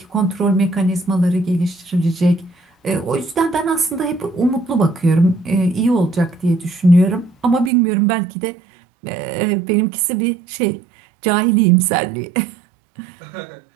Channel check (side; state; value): left; drops out; at 7.7 s